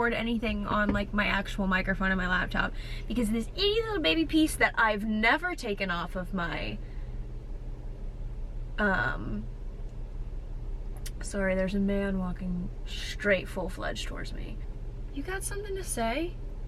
anything on like my actual microphone on my laptop because this itty little baby piece that I've never taken off of my sorry, there's a man walking straight full-fledged towards me. You got something to say?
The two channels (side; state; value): both; identical; correlation 1.00